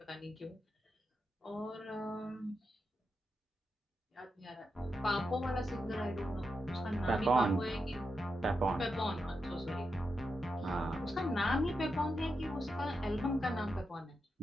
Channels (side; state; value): both; normal; correlation 0.86